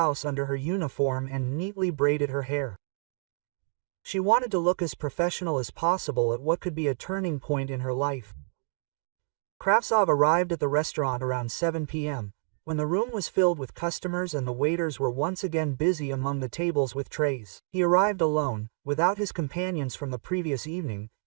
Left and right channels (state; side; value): silent; left; digital silence